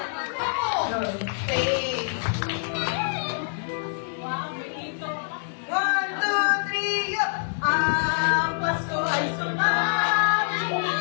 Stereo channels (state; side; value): silent; right; digital silence